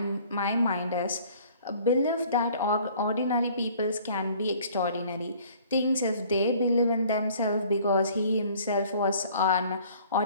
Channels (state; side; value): inverted; both; correlation -0.54